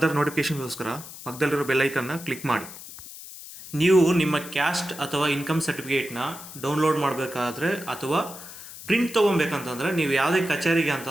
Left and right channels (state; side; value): noise; left; hiss, 14 dB below the sound